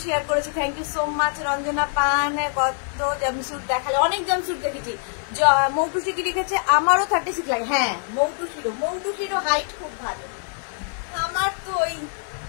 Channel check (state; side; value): silent; right; 63 dB below the other